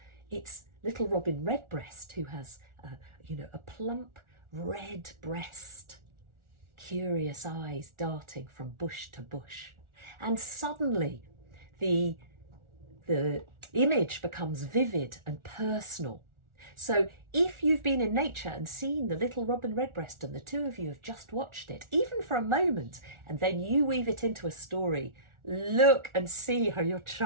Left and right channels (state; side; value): late; left; 1.4 ms